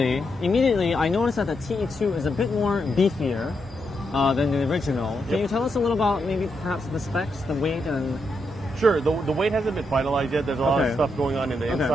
immediately, I noticed that the TE2 is a bit more beefier than the original. Can you tell us a little about maybe perhaps the specs, the weight, and... Sure, the weight hasn't been finalized yet. There's a lot of stuff going on in the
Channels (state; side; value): normal; both; correlation 0.82